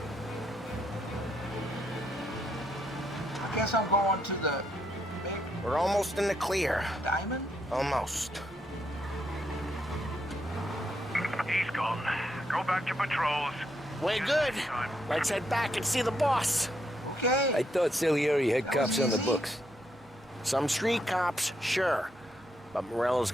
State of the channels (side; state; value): both; normal; correlation 0.77